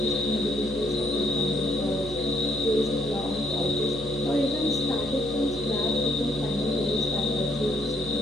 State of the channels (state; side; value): noise; right; hum, 13 dB below the sound